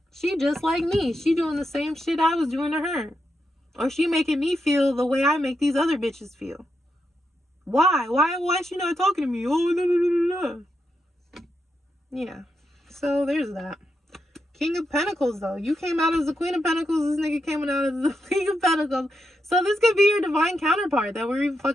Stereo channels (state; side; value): normal; both; correlation 0.84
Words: she just like me. She doing the same shit I was doing to her. Or she making me feel the way I make these other bitches feel. Why? Why is she not talking to me? Oh, no. Yeah. So there's that. King of Pentacles, though. You came out as the Queen of Pentacles. This nigga came out as the King of Pentacles. So this could be your divine counterpart that we're even